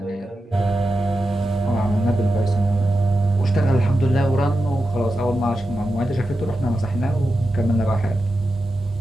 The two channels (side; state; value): both; normal; correlation 0.90